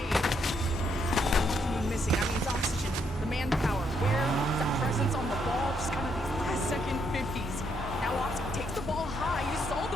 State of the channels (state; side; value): normal; both; correlation 0.75